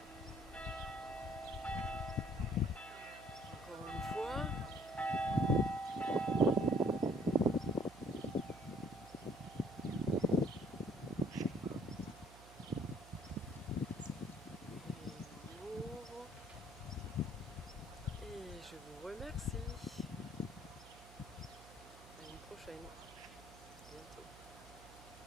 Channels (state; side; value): noise; right; hum, 19 dB below the sound